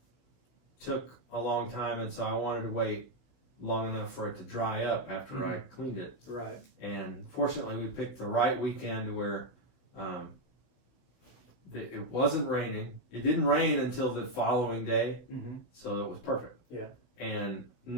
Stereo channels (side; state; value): right; late; 16 ms